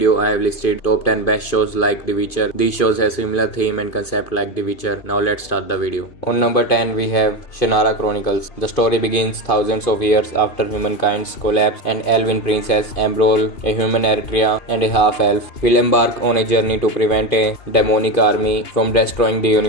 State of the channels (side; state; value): right; late; 2.5 ms